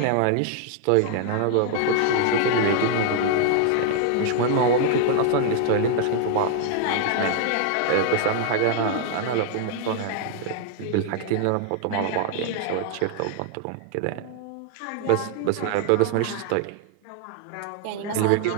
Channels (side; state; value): both; different; correlation 0.00